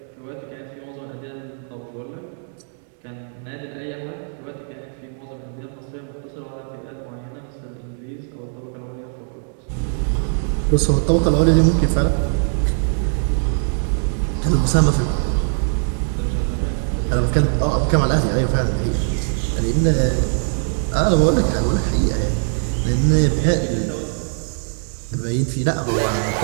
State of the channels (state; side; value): silent; left; digital silence